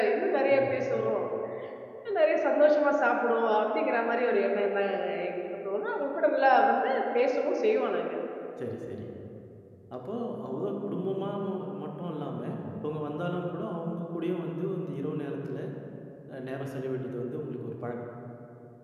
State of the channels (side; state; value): both; identical; correlation 1.00